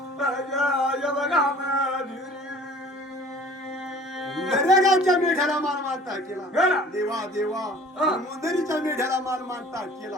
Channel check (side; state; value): both; normal; correlation 0.48